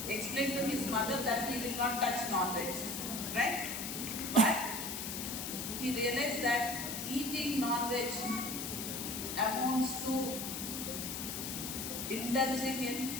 explained to his mother that he will not touch non-veg, right? But he realized that eating non-veg amounts to indulging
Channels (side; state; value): left; noise; hiss, 5 dB below the sound